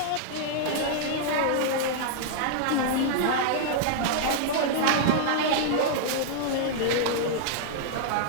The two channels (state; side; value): different; both; correlation -0.01